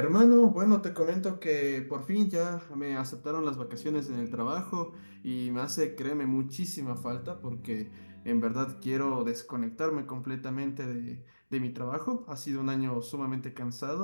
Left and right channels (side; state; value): both; inverted; correlation -1.00